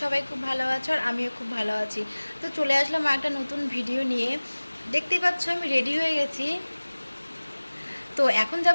সবাই খুব ভালো আছো আর আমিও খুব ভালো আছি। তো চলে আসলাম একটা নতুন ভিডিও নিয়ে। দেখতেই পাচ্ছ আমি রেডি হয়ে গেছি। তো এখন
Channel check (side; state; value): both; inverted; correlation -1.00